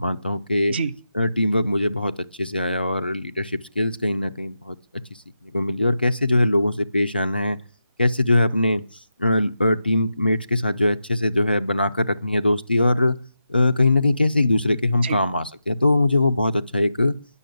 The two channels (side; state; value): both; inverted; correlation -0.88